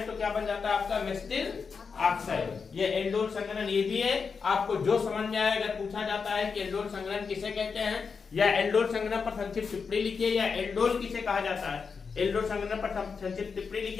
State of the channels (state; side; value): quieter; right; 5.5 dB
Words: तो क्या बन जाता है आपका मेसिटिल ऑक्साइड। ये एल्डोल संघनन ये भी है, आपको जो समझ में आए, अगर पूछा जाता है कि एल्डोल संघनन किसे कहते हैं या एल्डोल संघनन पर संक्षिप्त टिप्पणी लिखिए या एल्डोल किसे कहा जाता है, एल्डोल संघनन पर संक्षिप्त टिप्पणी